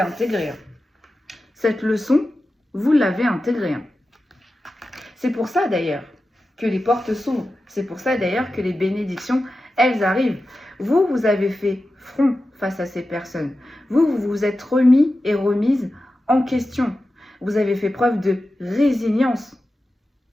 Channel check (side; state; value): both; normal; correlation 0.93